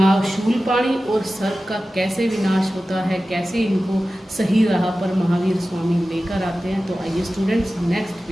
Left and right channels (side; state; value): both; normal; correlation 0.95